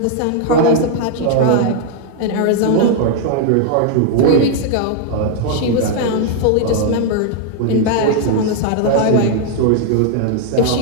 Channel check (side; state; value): both; different; correlation 0.00